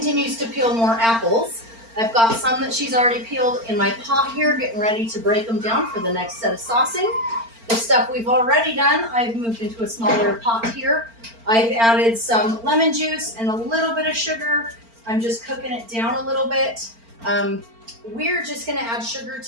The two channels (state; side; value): late; left; 4.4 ms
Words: to peel more apples, I've got some that she's already peeled in my pot here, getting ready to break them down for the next set of saucing. The stuff we've already done, I've moved into a smaller pot here. I've added some lemon juice and a little bit of sugar. I'm just cooking it down a little bit. We're just gonna add sugar